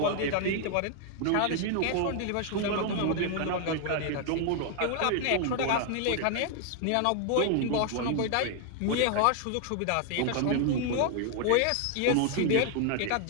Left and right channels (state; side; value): different; both; correlation 0.00